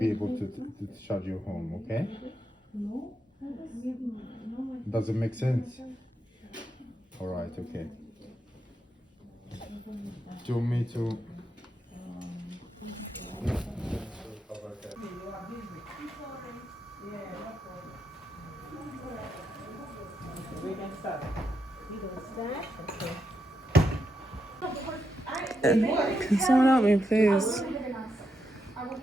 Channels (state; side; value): normal; both; correlation 0.83